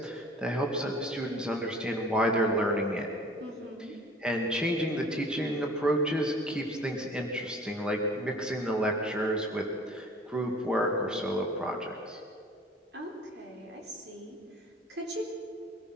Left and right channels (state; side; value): normal; both; correlation 0.48